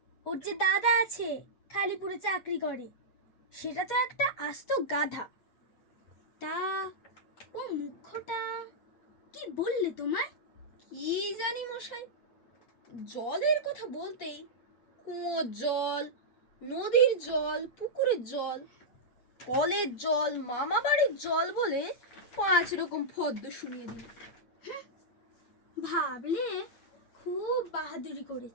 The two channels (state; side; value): late; right; 8.4 ms